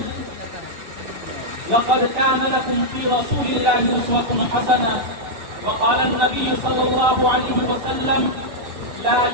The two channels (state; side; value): late; left; 6.7 ms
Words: لقد كان لكم في رسول الله أسوة حسنة. وقال النبي صلى الله عليه وسلم لا